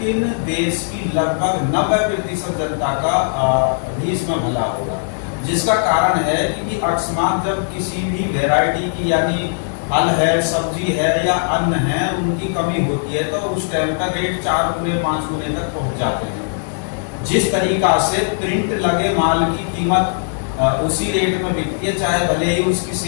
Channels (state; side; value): silent; right; digital silence